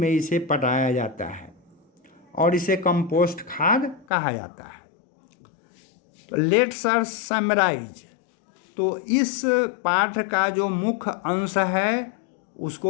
इसे पटाया जाता है और इसे कंपोस्ट खाद कहा जाता है। तो लेट्स अस समराइज। तो इस पाठ का जो मुख्य अंश है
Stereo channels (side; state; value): right; drops out; at 4.0 s